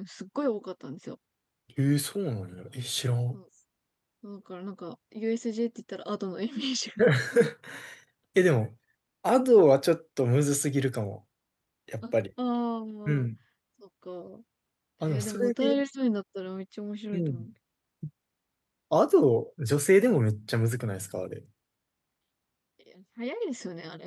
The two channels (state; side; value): identical; both; correlation 1.00